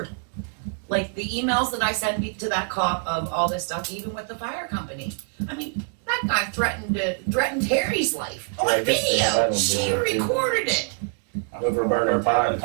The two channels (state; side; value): quieter; left; 38.9 dB